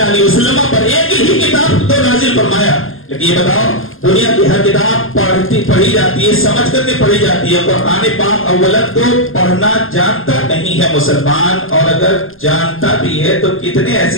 علیہ وسلم پر ایک ہی کتاب تو نازل فرمایا، لیکن یہ بتاؤ دنیا کی ہر کتاب پڑھی جاتی ہے، سمجھ کر کے پڑھی جاتی ہے، قرآن پاک اولا تو پڑھنا جانتا نہیں ہے مسلمان، اور اگر جانتا بھی ہے تو کتنے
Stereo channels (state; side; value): late; right; 0.60 ms